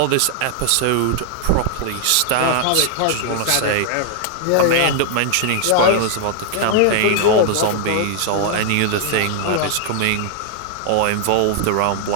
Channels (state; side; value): different; both; correlation 0.00